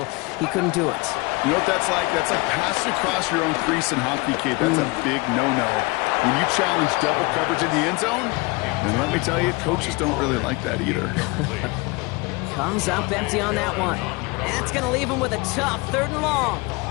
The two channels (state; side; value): quieter; right; 25.7 dB